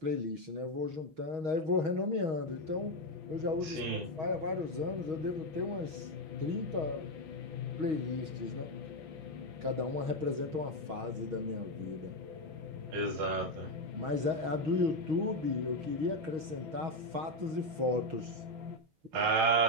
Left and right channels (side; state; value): left; late; 6.3 ms